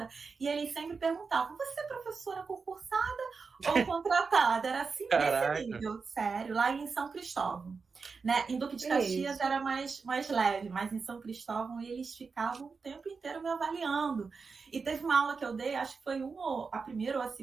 e eles sempre perguntavam, você é professora concursada ou contratada? Era assim, nesse nível, sério, lá em São Cristóvão. Né? Em Duque de Caxias Isso. era mais leve, mas em São Cristóvão eles ficavam o tempo inteiro me avaliando. E teve uma aula que eu dei, acho que foi a primeira ou a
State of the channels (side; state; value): left; quieter; 4.9 dB